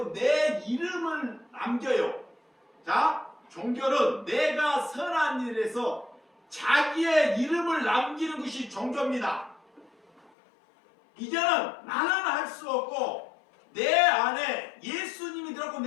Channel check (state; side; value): drops out; right; at 10.3 s